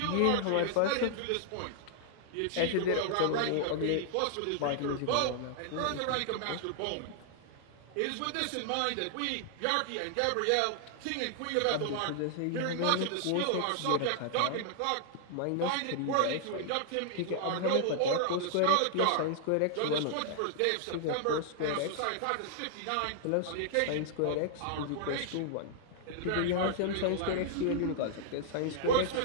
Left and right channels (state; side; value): different; both; correlation -0.01